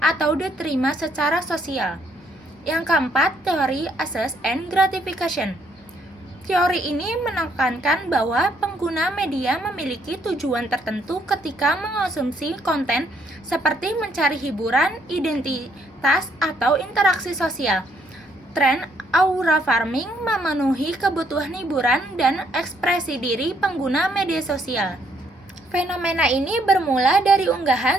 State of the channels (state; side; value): normal; both; correlation 0.70